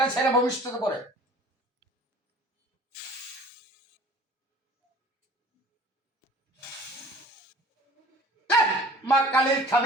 ছেড়ে ভবিষ্যৎ করে। মা কালী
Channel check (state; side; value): normal; both; correlation 0.46